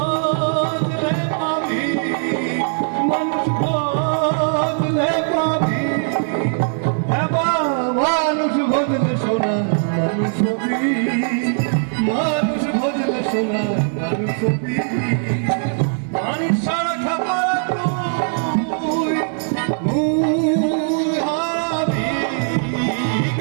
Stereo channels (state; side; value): silent; left; digital silence